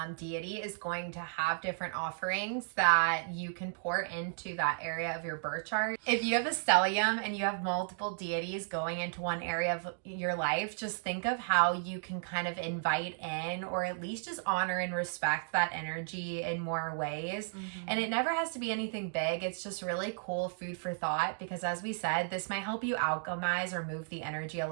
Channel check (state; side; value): silent; left; digital silence